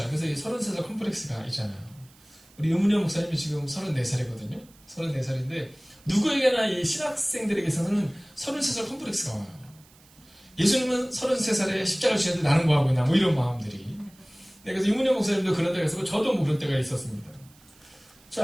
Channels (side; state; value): right; noise; hiss, 27 dB below the sound